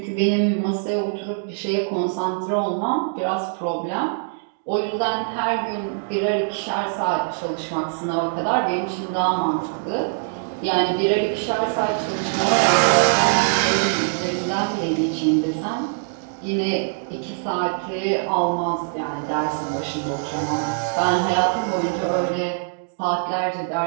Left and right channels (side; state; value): left; silent; digital silence